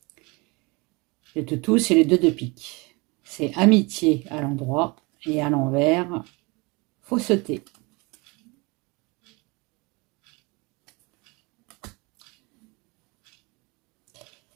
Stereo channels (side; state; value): left; quieter; 26.9 dB